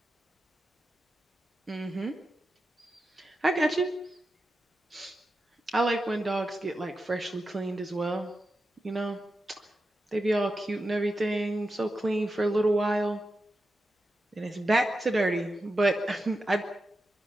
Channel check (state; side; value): normal; both; correlation 0.90